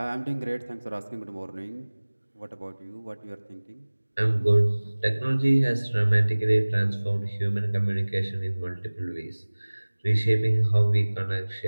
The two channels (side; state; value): both; inverted; correlation -1.00